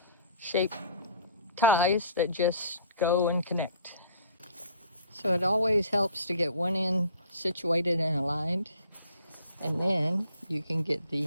ties that just go and connect. So it always helps to get one end situated and aligned, and then you can get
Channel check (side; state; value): both; inverted; correlation -0.52